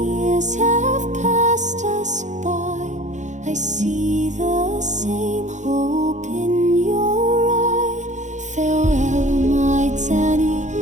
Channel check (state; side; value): late; left; 0.35 ms